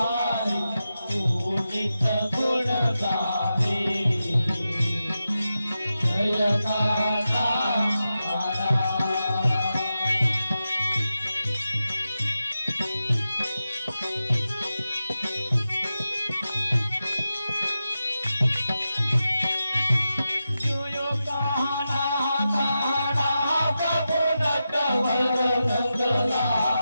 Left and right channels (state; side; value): inverted; both; correlation -0.91